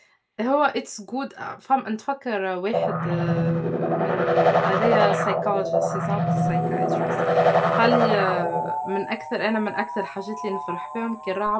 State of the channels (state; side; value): identical; both; correlation 1.00